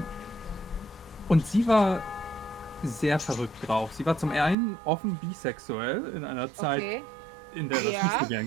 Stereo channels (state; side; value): drops out; left; at 4.5 s